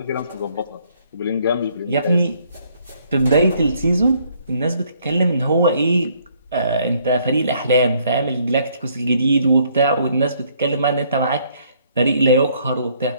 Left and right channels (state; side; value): inverted; both; correlation -0.66